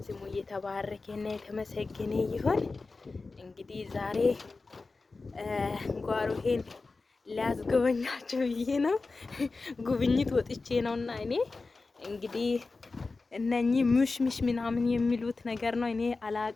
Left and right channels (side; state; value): right; quieter; 3.8 dB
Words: ስሙ የተባረከና የተመሰገነ ይሁን። እንግዲህ ዛሬ ጓሮሄን ሊያስጎበኛችሁ ብዬ ነው። ጉብኝት ወጥቼ ነውና እኔ እንግዲህ እነኚህ ሙሽሙሽ ምናምን የሚሉት ነገር ነው። እኔ